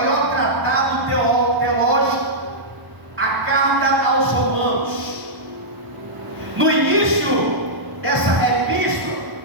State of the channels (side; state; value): left; late; 1.0 ms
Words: tratado teológico, a carta aos Romanos. No início dessa epístola,